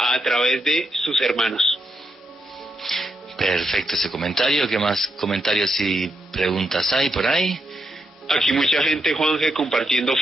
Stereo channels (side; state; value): both; normal; correlation 0.82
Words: través de sus hermanos. Perfecto ese comentario. ¿Qué más comentarios y preguntas hay por ahí? Aquí mucha gente, Juanje, compartiendo